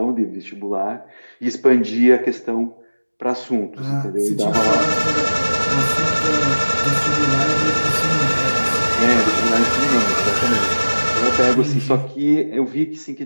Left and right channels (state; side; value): inverted; both; correlation -1.00